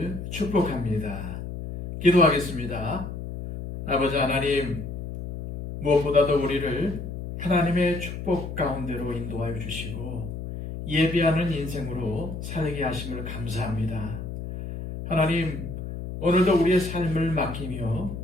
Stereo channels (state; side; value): noise; left; hum, 7 dB below the sound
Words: 축복합니다. 기도하겠습니다. 아버지 하나님, 무엇보다도 우리를 하나님의 축복 가운데로 인도하여 주시고 예배하는 인생으로 살게 하심을 감사합니다. 하나님, 오늘도 우리의 삶을 맡기며